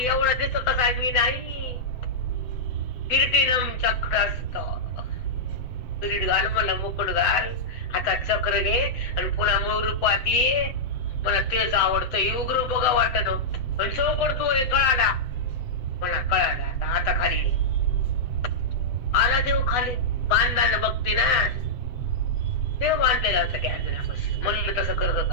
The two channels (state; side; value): late; right; 7.7 ms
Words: एवढं दिसत आहे मी नाही. किरीटिनम चक्रस्त, किरीट घाल मला, मुकुट घाल, हातात चक्र घे आणि पुन्हा मूळ रूपात ये. मला तेच आवडतं. उग्र बघा वाटत पण चौकड तू कळाला मला, कळाला. आता खाली ये. आला देव खाली, बांधानं बघते ना. देव बांधलेला होता त्या अर्जुनापासून. म्हणलं तसं करत